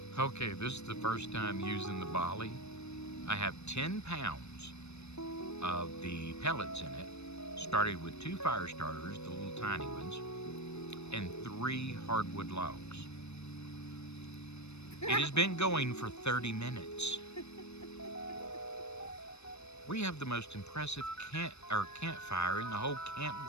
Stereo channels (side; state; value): right; late; 0.81 ms